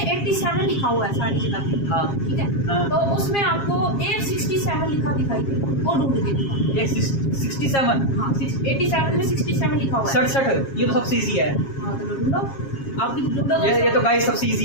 लिखा हुआ है सारी जगह पे। हाँ। ठीक है। हाँ। तो उसमें आपको 167 लिखा दिखाई दे, वो ढूंढ के दिखाओ। एक 67, हाँ, 87 में 67 लिखा हुआ है। 67, ये तो सबसे इजी है। हाँ, तो ढूंढो, आप भी ढूंढो ये दोस्तों। तो गाइस सबसे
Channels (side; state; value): right; late; 7.4 ms